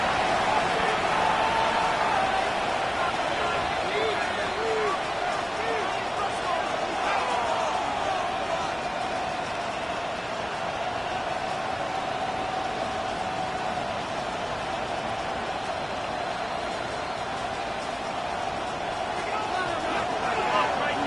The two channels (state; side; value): identical; both; correlation 1.00